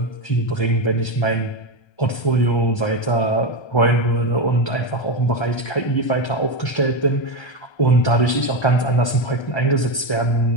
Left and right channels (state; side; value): late; right; 1.3 ms